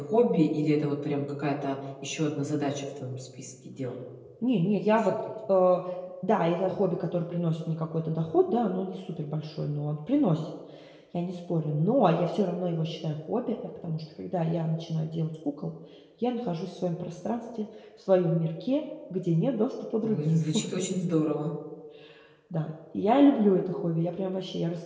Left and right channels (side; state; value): both; identical; correlation 1.00